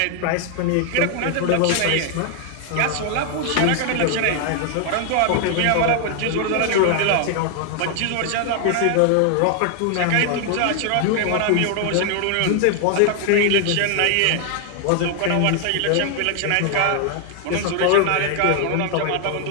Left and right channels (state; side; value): different; both; correlation 0.00